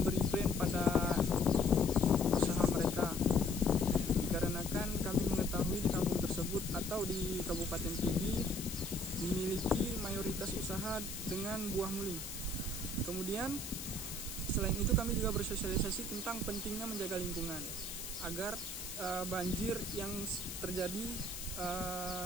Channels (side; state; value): left; noise; hiss, 8 dB below the sound